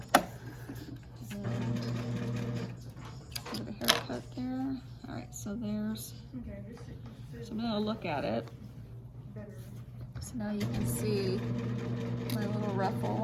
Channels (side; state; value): both; identical; correlation 1.00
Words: Haircut there. Alright, so there's, so I'm going to look at it. So now you can see my little ruffle